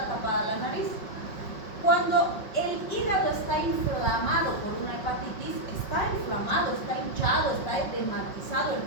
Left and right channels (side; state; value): right; late; 5.5 ms